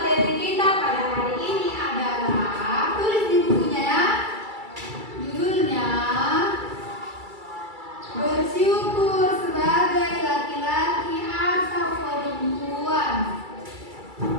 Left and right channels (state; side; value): late; left; 2.3 ms